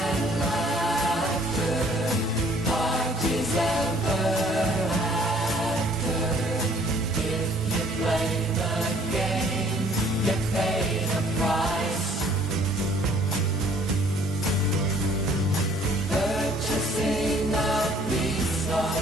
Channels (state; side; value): normal; both; correlation 0.59